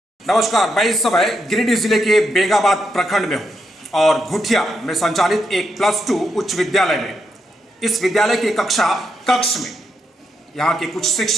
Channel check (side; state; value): both; normal; correlation 0.81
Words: नमस्कार, मैं इस समय गिरिडीह जिले के बेंगाबाद प्रखंड में हूँ और घुटिया में संचालित एक +2 उच्च विद्यालय में इस विद्यालय के कक्ष में यहाँ के कुछ